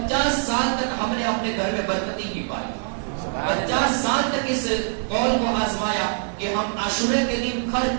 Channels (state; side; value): silent; left; 59 dB below the other